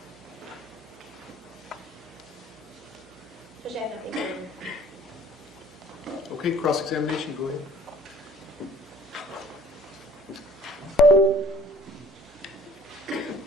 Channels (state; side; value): noise; right; hum, 26 dB below the sound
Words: Okay, cross-examination, go ahead.